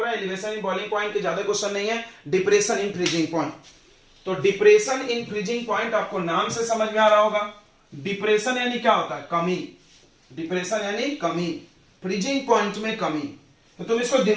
हैं, एलिवेशन इन बॉइलिंग पॉइंट के ज्यादा क्वेश्चन नहीं है, डिप्रेशन इन फ्रीजिंग पॉइंट। तो डिप्रेशन इन फ्रीजिंग पॉइंट आपको नाम से समझ में आ रहा होगा, डिप्रेशन यानी क्या होता है, कमी, डिप्रेशन यानी कमी, फ्रीजिंग पॉइंट में कमी। तो तुम इसको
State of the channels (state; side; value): identical; both; correlation 1.00